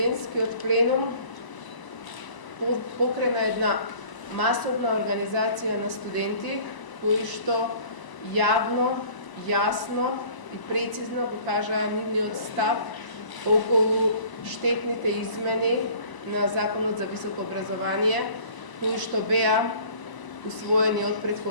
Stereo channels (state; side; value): late; right; 1.0 ms